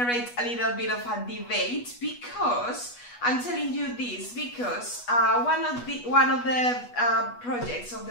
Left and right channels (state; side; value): late; right; 8.2 ms